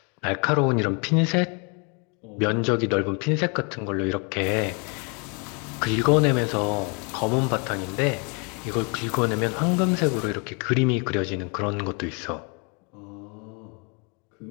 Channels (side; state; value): right; quieter; 34.1 dB